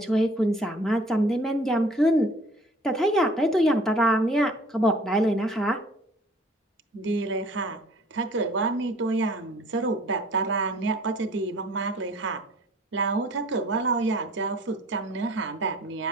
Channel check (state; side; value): normal; both; correlation 0.52